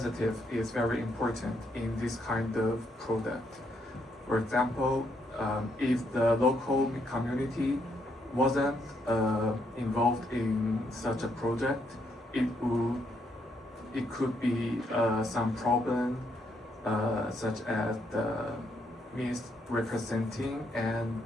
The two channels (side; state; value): both; normal; correlation 0.75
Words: is very important in this kind of product. For example, if the local community wasn't involved in such a project, it could be some problem such as the misrepresenting and